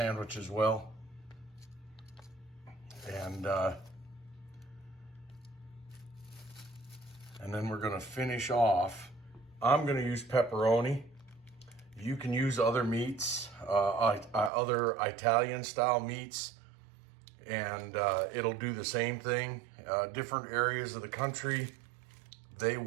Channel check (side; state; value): left; drops out; at 14.5 s